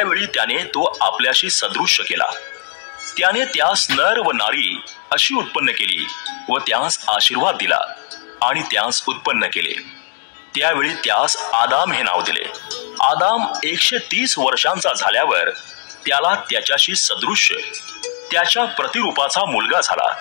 त्याने तो आपल्याशी सदृश्य केला. त्याने त्यास नर व नारी अशी उत्पन्न केली व त्यास आशीर्वाद दिला आणि त्यास उत्पन्न केले. त्यावेळी त्यास आदाम हे नाव दिले. आदाम 130 वर्षांचा झाल्यावर त्याला त्याच्याशी सदृश्य त्याच्या प्रतिरूपाचा मुलगा झाला.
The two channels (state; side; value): silent; right; digital silence